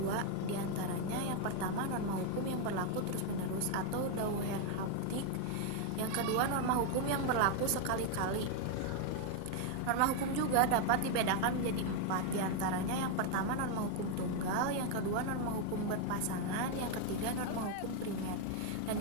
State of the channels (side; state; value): both; different; correlation 0.01